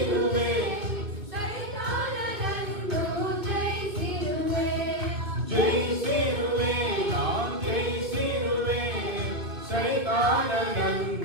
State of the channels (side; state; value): left; late; 2.3 ms